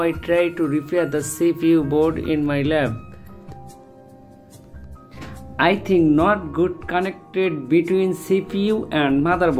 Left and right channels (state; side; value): identical; both; correlation 1.00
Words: I try to repair the CPU board in my lab. I think not good connected between CPU and